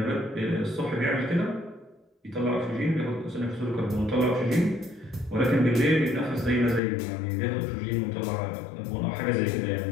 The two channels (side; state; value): right; drops out; at 6.8 s